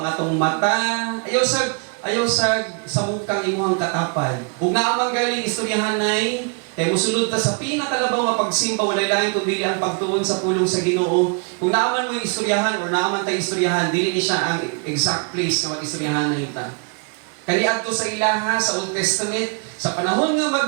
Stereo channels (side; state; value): left; quieter; 36.6 dB